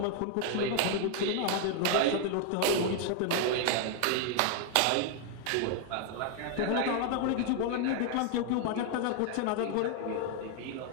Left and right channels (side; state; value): both; different; correlation 0.00